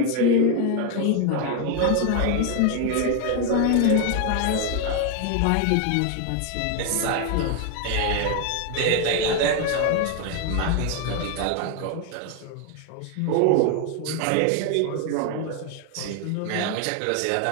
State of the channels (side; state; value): both; different; correlation 0.01